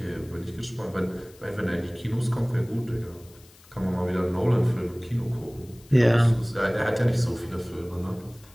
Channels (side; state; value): left; noise; hiss, 26 dB below the sound